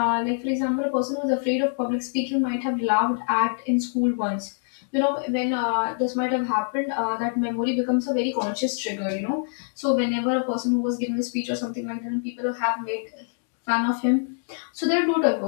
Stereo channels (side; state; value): right; silent; digital silence